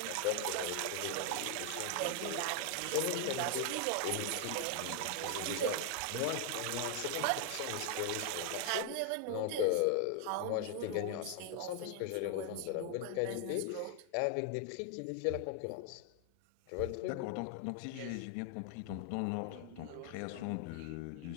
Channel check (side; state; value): both; different; correlation 0.00